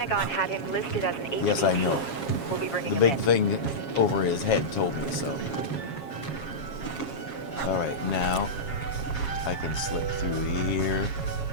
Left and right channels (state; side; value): late; right; 7.3 ms